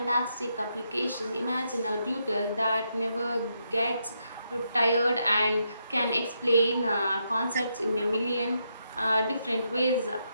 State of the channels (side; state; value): both; inverted; correlation -0.80